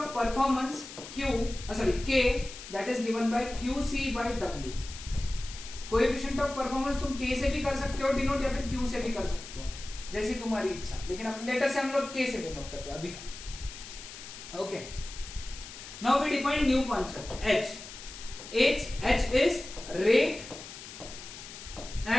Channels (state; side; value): noise; left; hiss, 13 dB below the sound